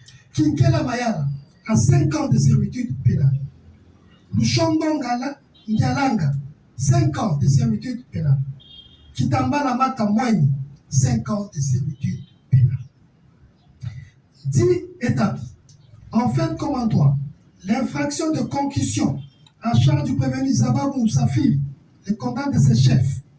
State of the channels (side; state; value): both; identical; correlation 1.00